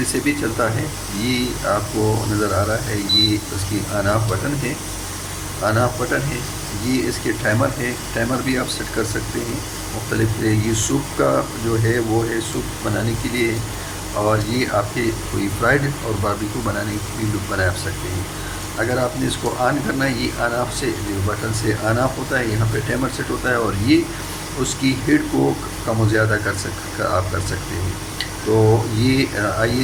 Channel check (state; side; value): identical; both; correlation 1.00